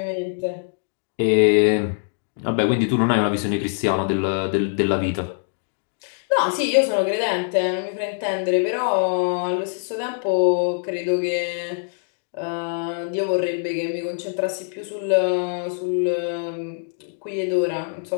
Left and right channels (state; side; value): silent; right; digital silence